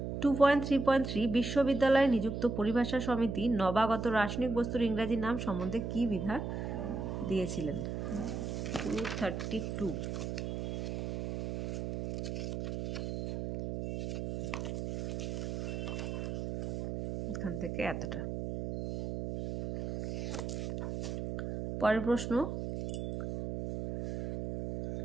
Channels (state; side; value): noise; right; hum, 4 dB below the sound